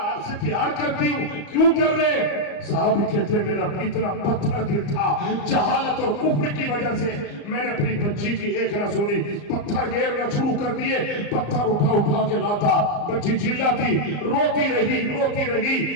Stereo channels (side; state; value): right; late; 34 ms